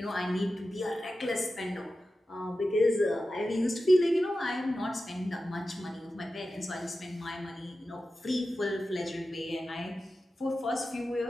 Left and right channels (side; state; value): both; normal; correlation 0.93